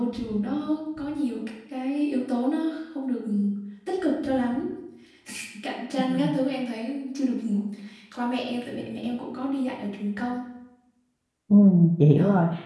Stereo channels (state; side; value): identical; both; correlation 1.00